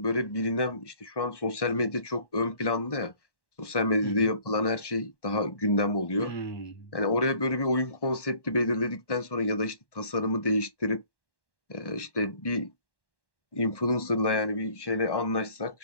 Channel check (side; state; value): right; late; 1.1 ms